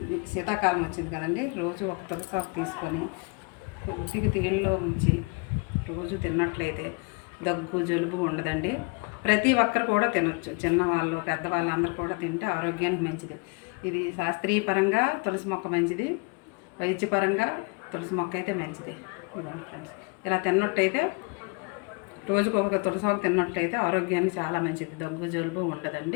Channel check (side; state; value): right; quieter; 31.6 dB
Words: శీతాకాలం వచ్చింది కదండి, రోజు ఒక తులసి ఆకు తీసుకొని కొద్దిగా తీళ్ళలో ఉంచి రోజు తిన్నట్లయితే దగ్గు జలుబు ఉండదండి. ప్రతి ఒక్కరు కూడా తినొచ్చు, చిన్నవాళ్ళు పెద్దవాళ్ళు అందరూ కూడా తింటే ఆరోగ్యానికి మంచిది. ఇది శాస్త్రీయపరంగా తులసి మొక్క మంచిది, వైద్యపరంగా తులసి మొక్క అయితే మంచిది. ఇదండి ఫ్రెండ్స్, ఇలా తిన్నట్టయితే రోజుకు ఒక తులసాకు తిన్నట్టయితే ఆరోగ్యానికి చాలా మంచిది, దగ్గు జలుబు